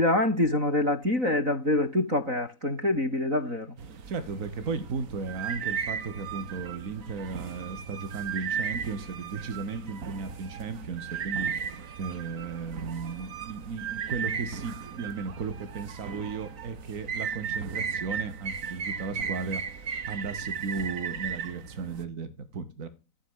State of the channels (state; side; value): late; left; 4.0 ms